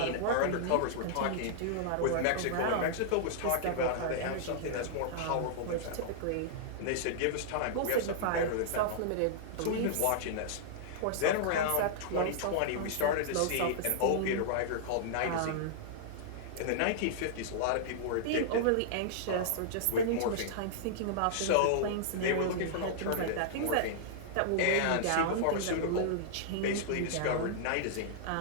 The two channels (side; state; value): both; different; correlation -0.01